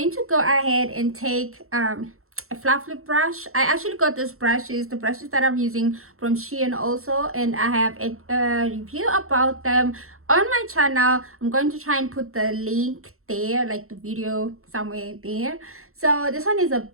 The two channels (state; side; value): late; left; 0.63 ms